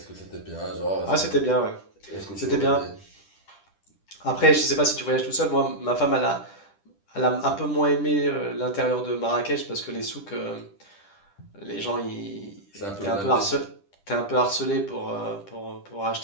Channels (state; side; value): late; right; 10 ms